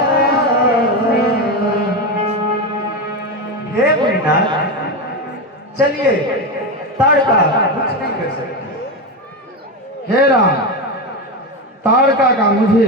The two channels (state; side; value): normal; both; correlation 0.15